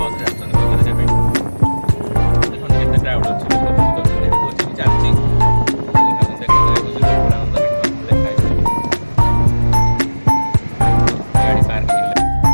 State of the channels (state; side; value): inverted; both; correlation -1.00